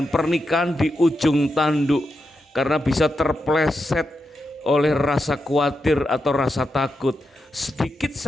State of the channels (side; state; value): both; normal; correlation 0.86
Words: pernikahan di ujung tanduk karena bisa terpleset oleh rasa khawatir atau rasa takut. Sedikit